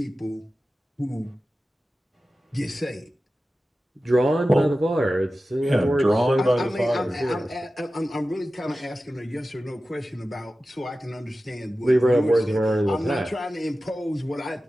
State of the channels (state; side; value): normal; both; correlation 0.94